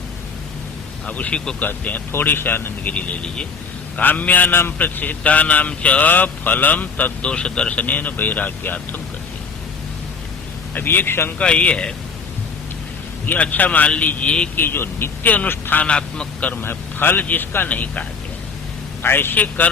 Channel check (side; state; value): right; quieter; 5.1 dB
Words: अब उसी को कहते हैं, थोड़ी सी आनंदगिरी ले लीजिए। काम्यानाम प्रतिषिद्धानाम च फलम तद्दोष दर्शनेन वैराग्यार्थम करते। अब एक शंका ये है कि अच्छा मान लीजिए कि जो नित्य अनुष्ठानात्मक कर्म है, फल जिसका नहीं कहा गया है, ऐसे